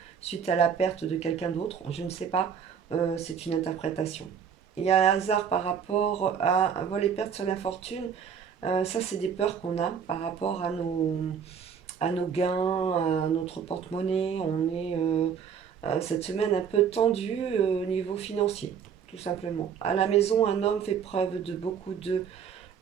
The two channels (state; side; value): quieter; left; 7.3 dB